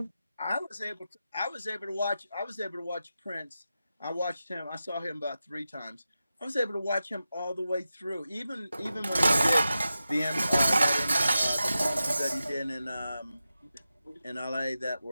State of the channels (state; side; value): inverted; both; correlation -0.92